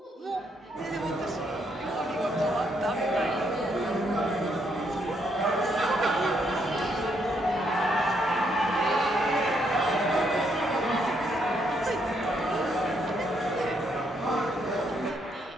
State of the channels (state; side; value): normal; both; correlation 0.74